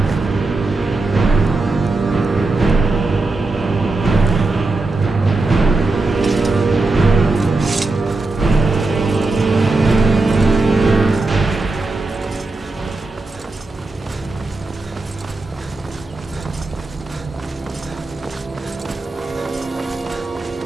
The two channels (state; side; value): quieter; left; 3.3 dB